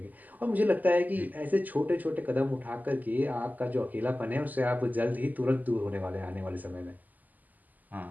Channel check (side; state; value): left; late; 0.082 ms